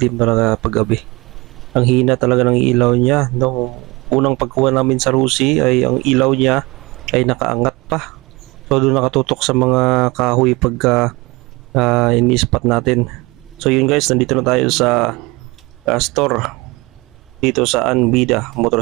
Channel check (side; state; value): left; quieter; 24.0 dB